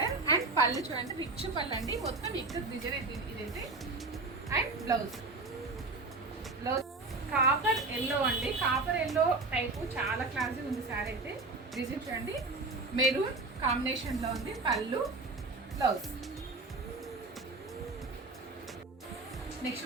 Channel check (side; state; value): left; quieter; 3.5 dB